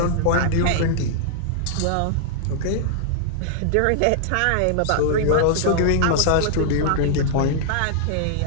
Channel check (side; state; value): both; different; correlation -0.01